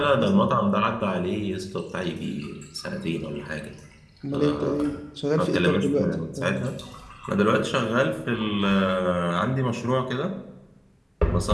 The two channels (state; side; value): identical; both; correlation 1.00